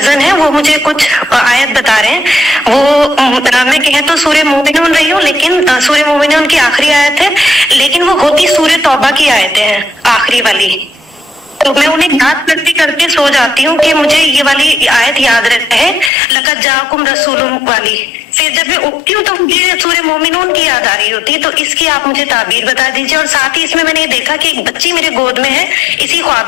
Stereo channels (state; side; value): drops out; right; at 16.1 s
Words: ہے، وہ مجھے کچھ آیت بتا رہے ہیں. وہ میں کہیں تو سورہ مومنون رہی ہوں، لیکن سورہ مومنون کی آخری آیت ہے، لیکن وہ ہوتی سورہ توبہ کی آیتیں ہیں آخری والی. تو میں انہیں یاد کرتے کرتے سو جاتی ہوں کہ مجھے یہ والی آیت یاد رہتا ہے، لقد جاءکم رسول والی. پھر جب میں اٹھتی ہوں تو مجھے سورہ مومنون کی یاد آ رہی ہوتی ہے. تو اس کی آپ مجھے تعبیر بتا دیجیے. اور ساتھ ہی اس میں نے یہ دیکھا کہ ایک بچی میرے گود میں ہے اسی خواب